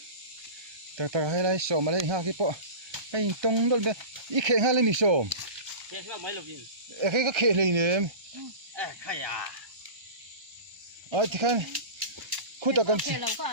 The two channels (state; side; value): late; left; 1.3 ms